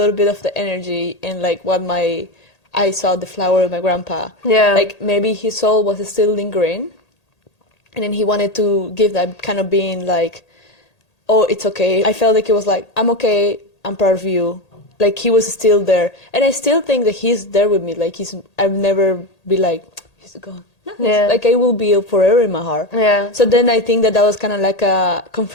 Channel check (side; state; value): right; late; 1.8 ms